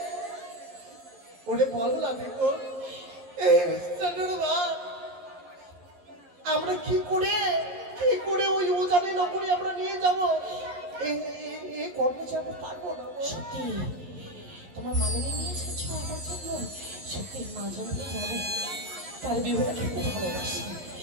ওরে বল না দেখো এই মিষ্টান্নর ভাত আমরা কি করে ওই উজানি নগরে আমরা নিয়ে যাবো? এই কর্মচারী আমরা পারবো না। সত্যি তোমার মামনি নিয়ে এসেছো আমার জন্য? সত্যি মা জনকে জানে তার বিহুটা খেতে ভালোবাসি।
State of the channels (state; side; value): late; left; 11 ms